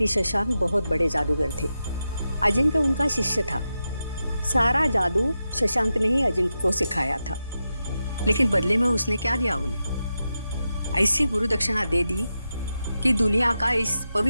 शशांक बहुत बड़े जादूगर थे, अजिंक्य उनका शिष्य था। सारा जादू शशांक ने ही अजिंक्य को सिखाया था, लेकिन बदले में उसने क्या दिया उन्हें? ऐसी गुरु दक्षिणा दे दी कि दुनिया का इस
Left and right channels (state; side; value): inverted; both; correlation -0.89